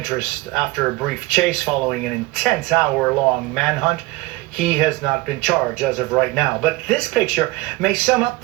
after a brief chase following an intense hour-long manhunt. He has not been charged as of right now. But this picture may sum up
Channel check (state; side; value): quieter; left; 20.6 dB